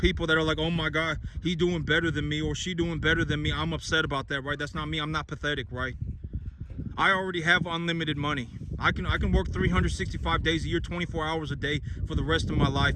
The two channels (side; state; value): both; identical; correlation 1.00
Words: that are like, oh my God, he's doing better than me or she doing better than me. I'm upset about that, right? That's not me. I'm not pathetic, right? I already have unlimited money. I can work 365 days a year, 24 hours a day for the rest of my